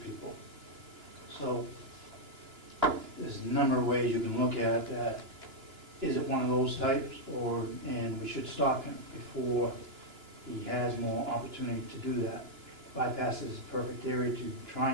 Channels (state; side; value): late; left; 2.9 ms